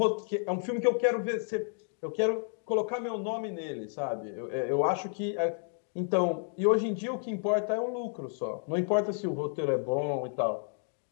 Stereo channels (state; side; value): silent; right; 57 dB below the other